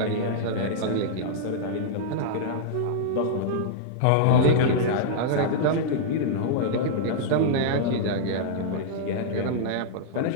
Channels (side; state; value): both; different; correlation -0.02